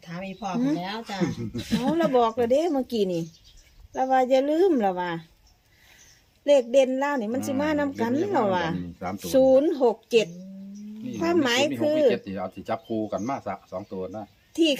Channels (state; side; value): identical; both; correlation 1.00